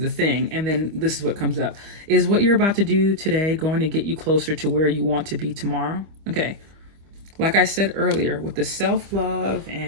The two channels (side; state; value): left; late; 25 ms